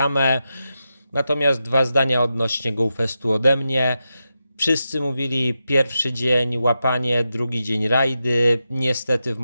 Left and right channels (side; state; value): both; inverted; correlation -0.88